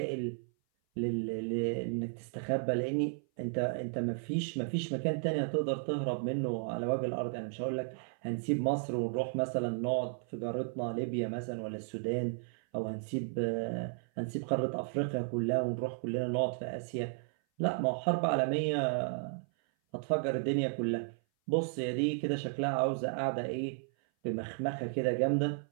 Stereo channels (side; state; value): left; silent; 55 dB below the other